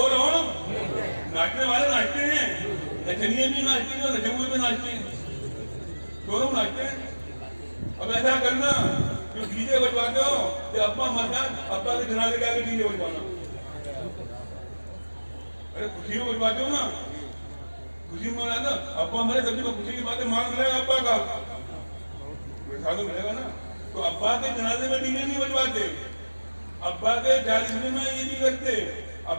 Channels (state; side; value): inverted; both; correlation -1.00